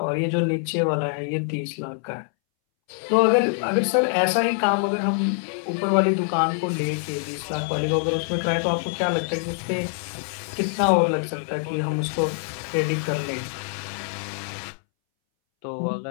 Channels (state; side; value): silent; right; 62 dB below the other